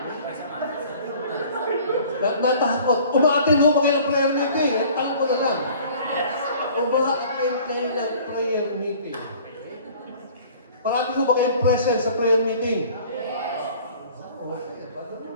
Natakot. Umaatin ho ba kayo ng prayer meeting? Ang tanong ko na lang. Umaatin kayo ng prayer meeting. Parati ho ba kayong present sa prayer meeting? Yes.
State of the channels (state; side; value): inverted; both; correlation -0.50